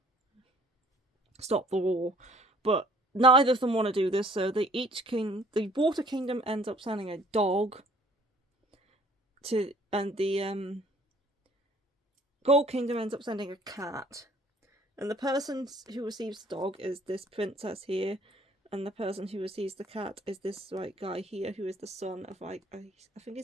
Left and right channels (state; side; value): normal; both; correlation 0.57